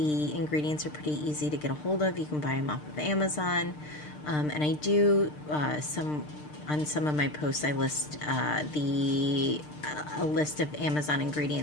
ingredients are pretty easy to get a hold of. You can buy them off of Amazon. And I do some on some of my posts. I list a list of Amazon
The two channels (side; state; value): right; late; 6.6 ms